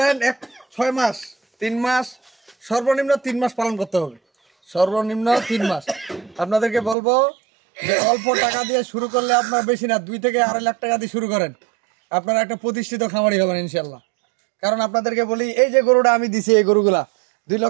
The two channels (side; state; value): left; drops out; at 7.0 s